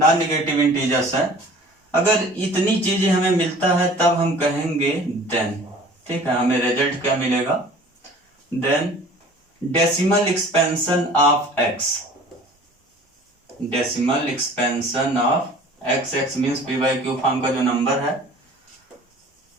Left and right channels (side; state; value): both; normal; correlation 0.46